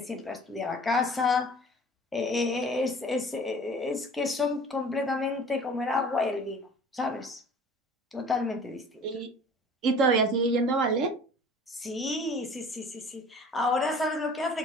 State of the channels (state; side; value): normal; both; correlation 0.46